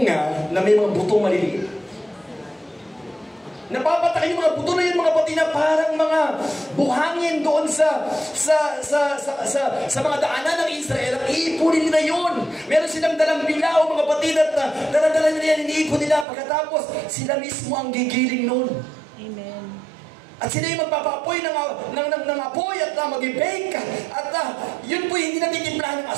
na may mga butong maliliit. Napapatak yung mga buto na yun mga patid na parang mga buhangin doon sa mga daanan ng Israel. Ang iipunin nila yun. Meron silang dalang bilaw mga patid at daladala nila yan, iniipon nila. Pagkatapos, sila mismo ang gigiling nun. Amen. At sila yung magpapapoy ng apoy at mag-bake. At yun po hindi natitimplahan ng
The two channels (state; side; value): drops out; left; at 16.2 s